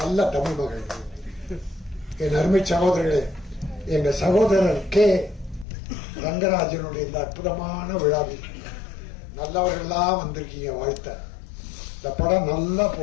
தமிழ் மகள். என் அருமை சகோதரர்களே, எங்க சகோதரர் கே ரங்கராஜனுடைய இந்த அற்புதமான விழாவில் நல்லவர்கள்லாம் வந்திருக்கீங்க, வாழ்த்த. இந்த படம் நல்லா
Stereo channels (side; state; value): right; drops out; at 5.7 s